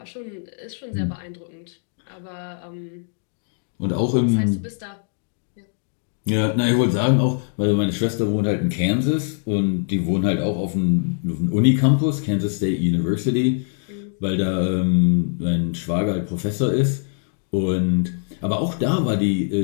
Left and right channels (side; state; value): right; silent; digital silence